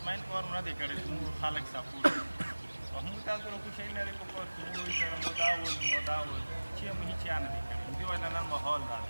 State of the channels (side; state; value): both; inverted; correlation -1.00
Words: کار نه دی کړی چې موږ خلک سپورټ او موږ تاسو له کوشش نه دی په کار کې موږ سره مو دا ول چې موږ هیڅ نه دی کړی دې وجه نن ماحول دا